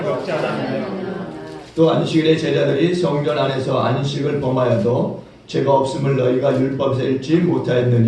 먹지 않았느냐. 또 안식일에 제자들이 성전 안에서 안식을 범하여도 죄가 없음을 너희가 율법에서 읽지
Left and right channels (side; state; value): both; identical; correlation 1.00